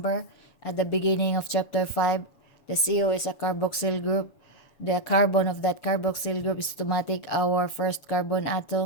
at the beginning of chapter 5, the CO is a carboxyl group. The carbon of that carboxyl group is to take our first carbon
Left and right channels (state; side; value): late; right; 6.9 ms